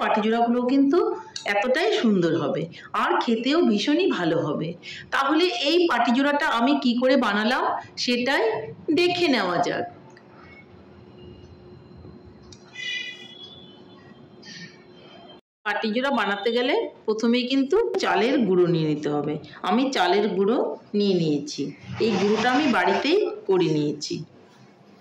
পাটিচূড়াগুলো কিন্তু এতটাই সুন্দর হবে আর খেতেও ভীষণই ভালো হবে। তাহলে এই পাটিচূড়াটা আমি কি করে বানালাম সেটাই দেখে নেওয়া যাক। পাটিচূড়া বানাতে গেলে প্রথমেই কিন্তু চালের গুঁড়ো নিয়ে নিতে হবে। আমি চালের গুঁড়ো নিয়ে নিয়েছি। এই গুঁড়োটা আমি বাড়িতেই করে নিয়েছি।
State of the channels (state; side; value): identical; both; correlation 1.00